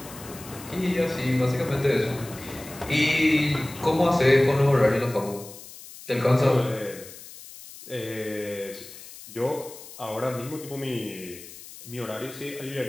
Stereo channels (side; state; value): left; noise; hiss, 16 dB below the sound